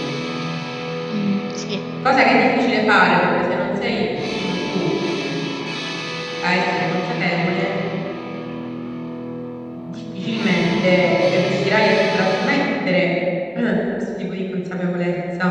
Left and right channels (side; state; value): both; identical; correlation 1.00